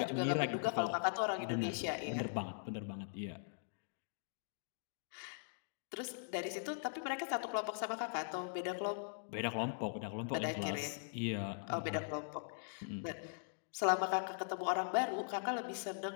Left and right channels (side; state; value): right; silent; digital silence